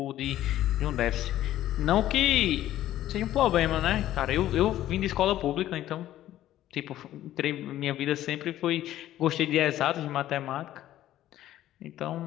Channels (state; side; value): quieter; right; 13.3 dB